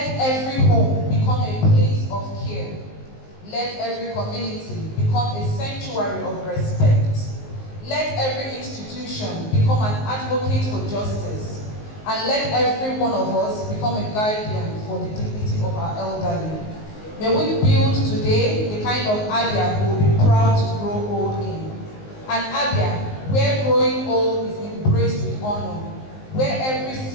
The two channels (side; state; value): right; late; 19 ms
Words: every home become a place of care. Let every community become a sanctuary of respect. Let every institution become an advocate for justice. And let every one of us become a guardian for the dignity of our elderly. May we build today the kind of Abia we will be proud to grow old in. An Abia where growing old is embraced with honor, where every